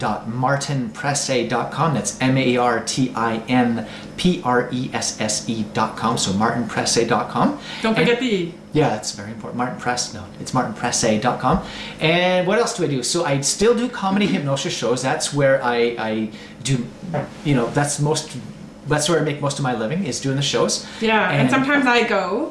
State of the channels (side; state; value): both; identical; correlation 1.00